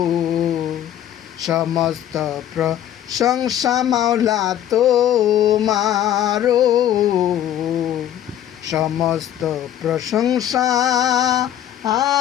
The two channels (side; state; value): right; quieter; 11.1 dB